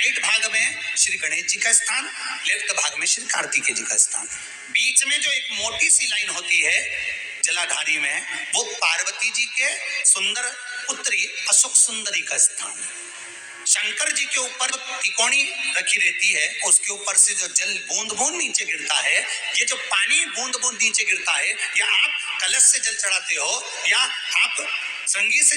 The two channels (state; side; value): identical; both; correlation 1.00